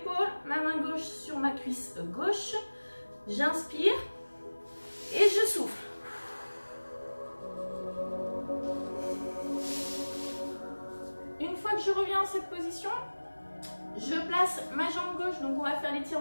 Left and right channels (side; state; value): both; inverted; correlation -1.00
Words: ma main gauche sur ma cuisse gauche. J'inspire et je souffle. Une fois que je reviens dans cette position, je place ma jambe gauche, donc on va faire